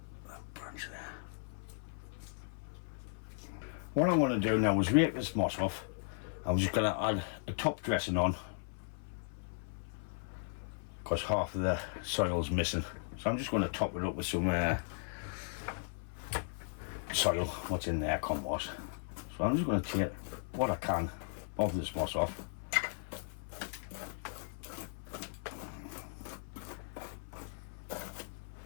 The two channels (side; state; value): right; silent; 53 dB below the other